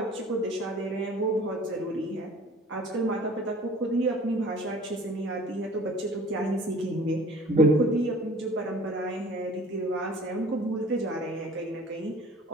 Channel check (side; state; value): both; normal; correlation 0.48